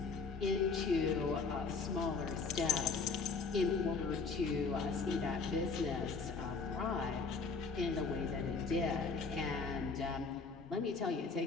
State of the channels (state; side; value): quieter; right; 4.5 dB